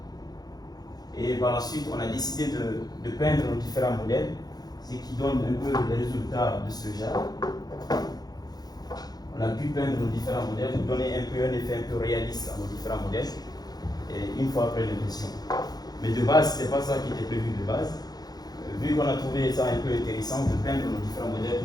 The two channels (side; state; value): right; late; 0.19 ms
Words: et par la suite, on a décidé de peindre nos différents modèles, ce qui donne un peu les résultats de ce genre. On a pu peindre nos différents modèles, pour donner un effet un peu réaliste à nos différents modèles, et une fois après l'impression. Mais de base, ce n'était pas ça qui était prévu de base. Vu qu'on a trouvé ça un peu intéressant de peindre nos différents modèles